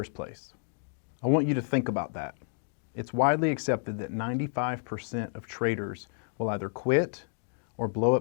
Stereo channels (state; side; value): silent; right; digital silence